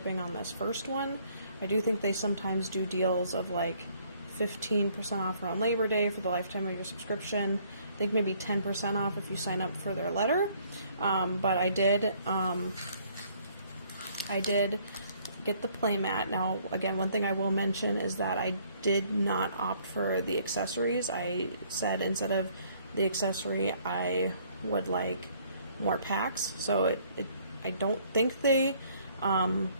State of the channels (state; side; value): inverted; both; correlation -0.63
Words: on this first one. I do think they sometimes do deals of like 15% off around Labor Day for the lifetime of your subscription. I think maybe 10% off if you sign up for their letter. But I did get the playmat. Now, again, one thing I will mention is that I did not opt for the accessories. I said instead of the accessory, I would like more packs. So I don't think they